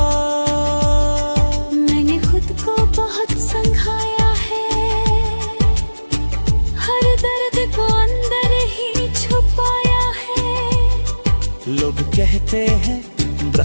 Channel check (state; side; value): inverted; both; correlation -1.00